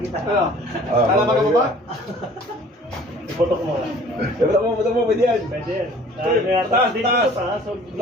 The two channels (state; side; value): normal; both; correlation 0.51